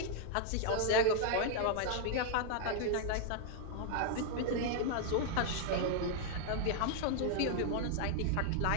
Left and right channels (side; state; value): both; different; correlation 0.00